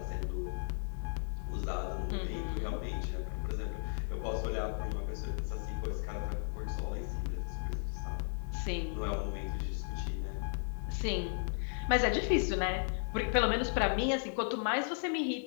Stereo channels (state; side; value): silent; right; digital silence